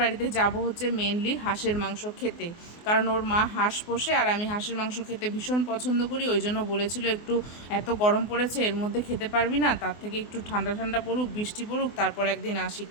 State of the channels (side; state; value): right; late; 24 ms